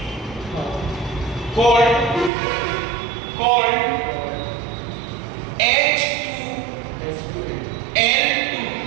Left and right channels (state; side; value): drops out; left; at 2.3 s